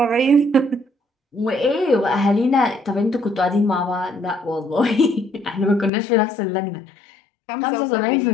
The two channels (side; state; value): right; drops out; at 5.9 s